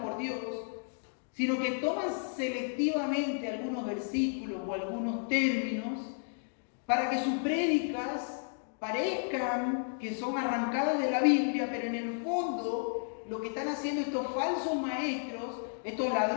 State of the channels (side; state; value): right; silent; digital silence